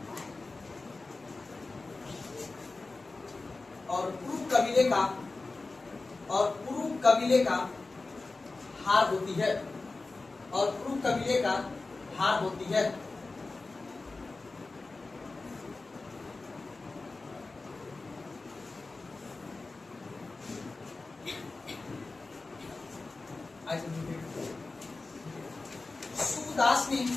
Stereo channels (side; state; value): right; quieter; 3.5 dB